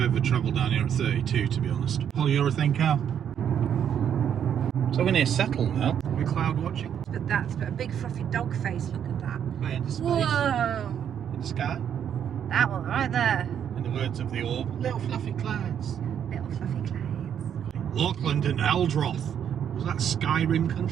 ever travelled down here at 32, to be honest. Polyurethane car. So we're near Settle now. We're cloud watching. But that's a big fluffy dog face, look at that. Way into space. Whoa! In the sky. That one right there. In the words of the orb, little fluffy clouds. Little fluffy clouds. Lochland and Eldroth. Was that Skyrim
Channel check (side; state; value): left; quieter; 8.9 dB